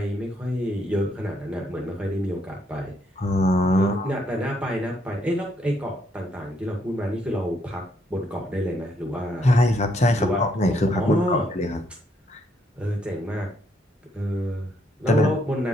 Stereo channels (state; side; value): normal; both; correlation 0.72